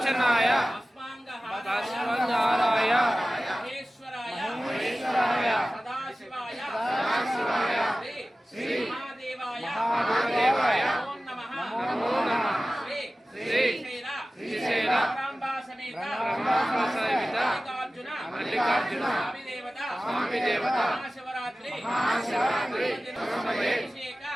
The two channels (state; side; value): normal; both; correlation 0.96